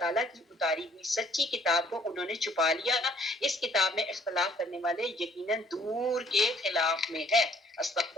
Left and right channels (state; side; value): normal; both; correlation 0.62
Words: کی اتاری ہوئی سچی کتاب کو انہوں نے چھپا لیا. اس کتاب میں اختلاف کرنے والے یقیناً دور کے خلاف میں ہے.